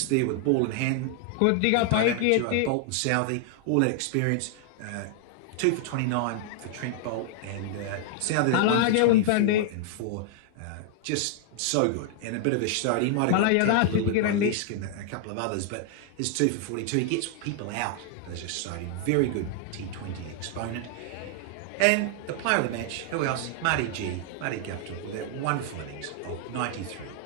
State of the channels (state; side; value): different; both; correlation 0.00